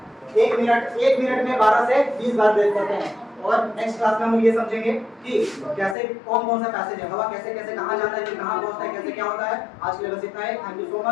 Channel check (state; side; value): drops out; right; at 6.0 s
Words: 1 मिनट में 12 से 20 बार ब्रेथ करते हैं और नेक्स्ट क्लास में हम ये समझेंगे कि कैसे कौन सा पैसेज है हवा कैसे कैसे कहाँ जाता है फिर कहाँ पहुँचता है कैसे क्या होता है आज के लिए बस इतना है thank you so